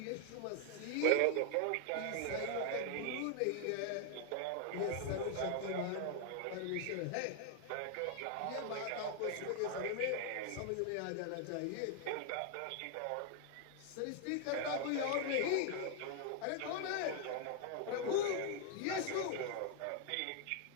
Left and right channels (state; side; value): different; both; correlation 0.00